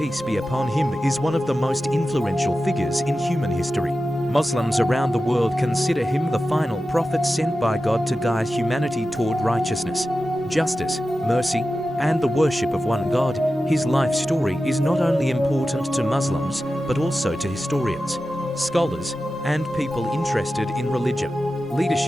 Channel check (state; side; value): normal; both; correlation 0.93